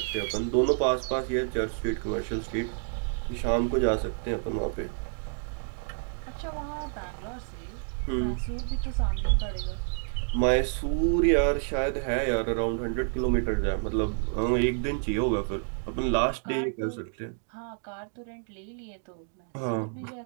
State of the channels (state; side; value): silent; left; 59 dB below the other